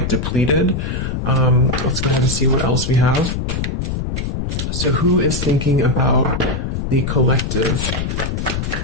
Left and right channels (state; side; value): noise; left; rumble, 2 dB below the sound